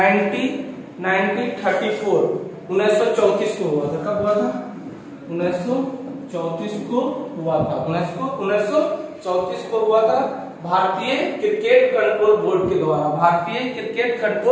1934 को हुआ था। कब हुआ था? 1934 को हुआ था। 1934 1934 को हुआ था भारतीय क्रिकेट कंट्रोल बोर्ड के द्वारा। भारतीय क्रिकेट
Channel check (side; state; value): both; identical; correlation 1.00